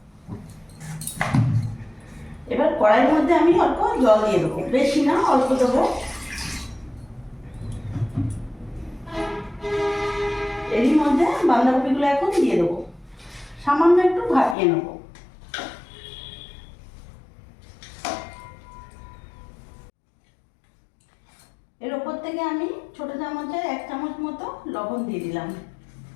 এবার কড়াইয়ের মধ্যে আমি অল্প জল দিয়ে দেবো, বেশি না, অল্প দেবো। এরই মধ্যে বাঁধাকপিগুলো এখন দিয়ে দেবো, সামান্য একটু ভাপিয়ে নেবো। এর ওপর থেকে আমি ছোট চামচের 1 চামচ মতো লবণ দিয়ে দিলাম।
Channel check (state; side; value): drops out; right; at 14.6 s